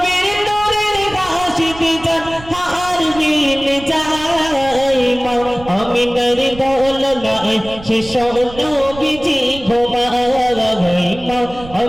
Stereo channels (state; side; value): noise; right; rumble, 17 dB below the sound